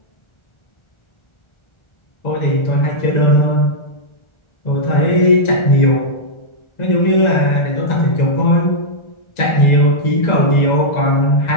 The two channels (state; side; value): late; right; 1.4 ms